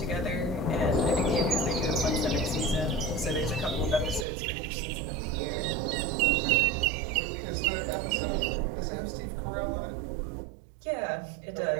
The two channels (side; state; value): left; drops out; at 4.2 s